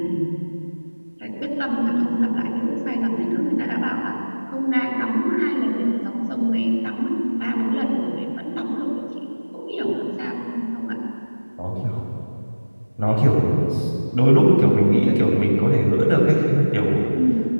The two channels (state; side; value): inverted; both; correlation -1.00